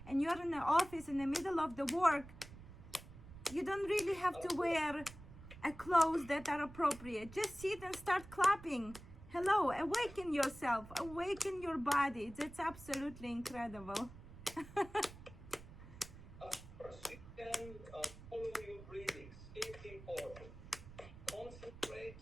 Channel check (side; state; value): right; noise; rumble, 16 dB below the sound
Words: and you're in the office in the middle of the work, you don't really have to wear clothes that are appropriate. Just sit and start clapping. Hello, awaken yourself, awaken your body. That's absolutely incredible. You can follow your breathings. It's important. Concentrate.